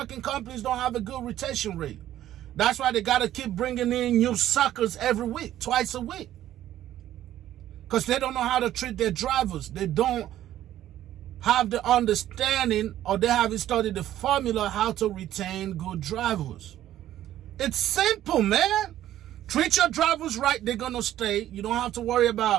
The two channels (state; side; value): quieter; left; 12.7 dB